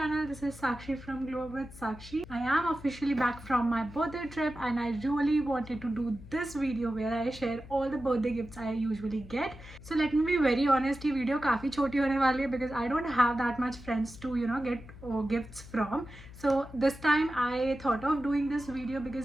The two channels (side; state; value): left; noise; hum, 17 dB below the sound